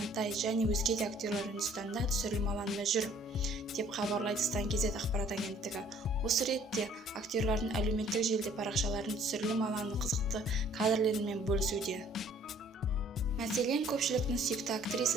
және өзге де актерлер Үндістанда түсірілім алаңында жүр, деп хабарлайды Стан.kz ақпарат агенттігі. Осы ретте актерлердің әлеуметтік желіде парақшаларын түсірілім алаңының қызықты кадрлерімен бөлісуде. Мәселен, көпшіліктің сүйікті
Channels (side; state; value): both; normal; correlation 0.57